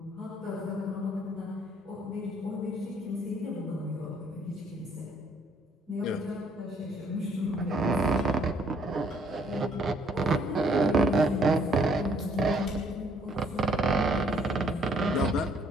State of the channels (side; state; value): both; normal; correlation 0.64